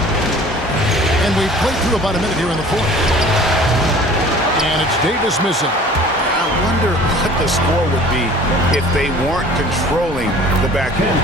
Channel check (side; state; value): both; normal; correlation 0.47